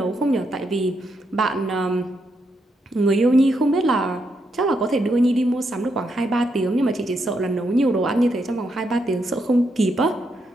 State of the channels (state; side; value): normal; both; correlation 0.80